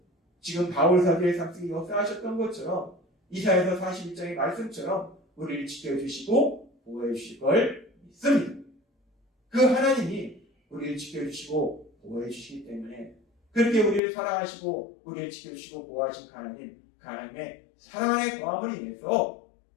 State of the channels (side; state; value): right; drops out; at 14.0 s